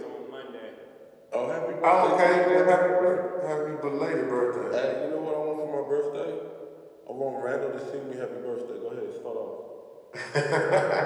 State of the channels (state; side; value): identical; both; correlation 1.00